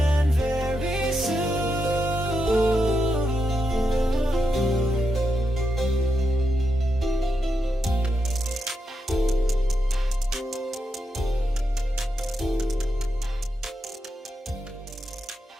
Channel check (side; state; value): both; normal; correlation 0.85